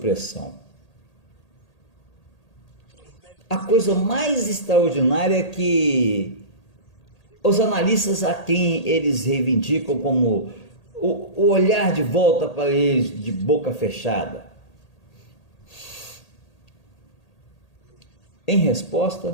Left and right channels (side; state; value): right; late; 1.8 ms